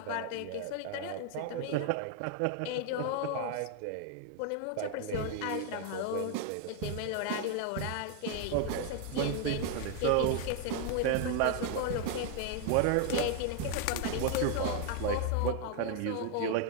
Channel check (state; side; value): different; both; correlation 0.00